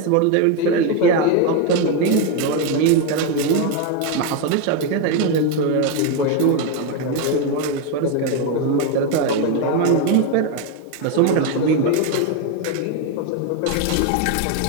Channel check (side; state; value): both; different; correlation 0.02